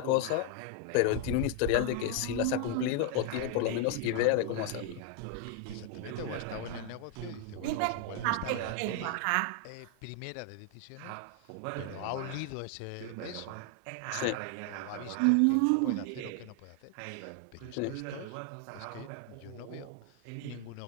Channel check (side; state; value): both; different; correlation 0.00